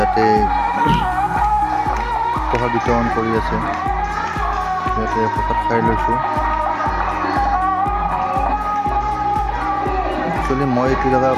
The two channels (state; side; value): identical; both; correlation 1.00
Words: প্ৰসাদ বিতৰণ কৰি আছে। ইয়াতে প্ৰসাদ খাই লৈছোঁ। একচুৱেলি মই এইটো জেগা